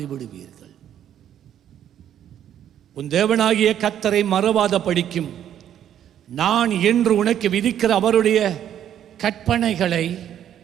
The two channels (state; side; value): quieter; left; 10.4 dB